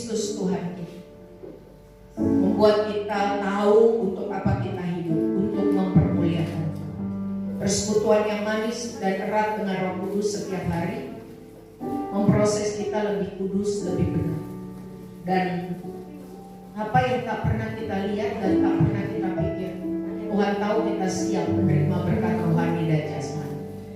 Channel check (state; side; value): identical; both; correlation 1.00